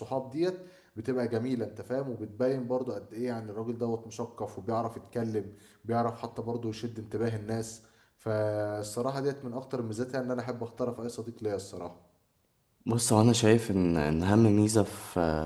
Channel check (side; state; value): both; identical; correlation 1.00